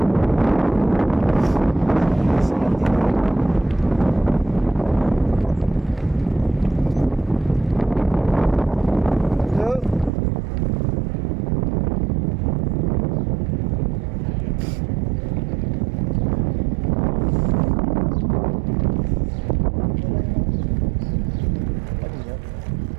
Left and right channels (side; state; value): left; drops out; at 10.1 s